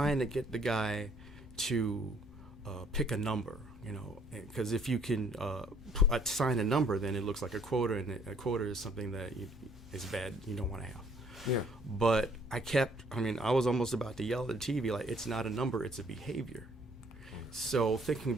to get the guy to pick a number, because if you can assign a number, then it looks like a quota, and a quota is something that is bad, you don't want to have. Yeah. But I was almost about to yell at the TV, like, it's not a number, it's a behavior. So thinking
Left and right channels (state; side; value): normal; both; correlation 0.62